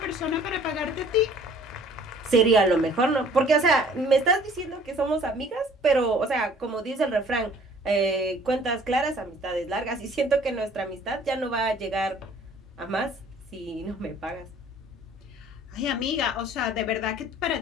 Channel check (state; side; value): normal; both; correlation 0.53